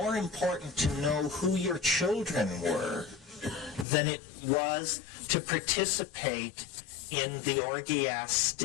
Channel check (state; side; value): drops out; right; at 3.9 s